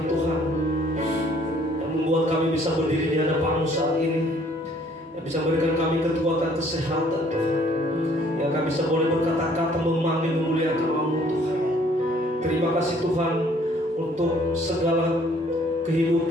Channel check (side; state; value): both; normal; correlation 0.60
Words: Tuhan, yang membuat kami bisa berdiri di hadapan-Mu saat ini, yang bisa memberikan kami kekuatan kesehatan Tuhan, yang kami bisa boleh berkata-kata memanggil memuliakan nama-Mu Tuhan. Terima kasih Tuhan untuk segala